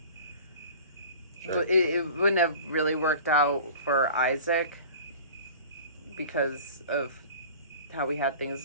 Sure. It wouldn't have really worked out for Isaac because of how we had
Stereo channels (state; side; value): inverted; both; correlation -0.41